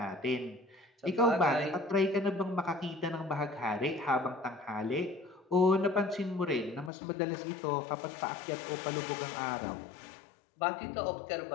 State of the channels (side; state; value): right; drops out; at 6.9 s